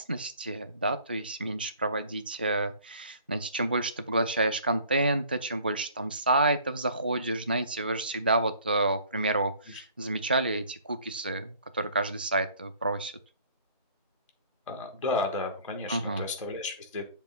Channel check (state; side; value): inverted; both; correlation -0.53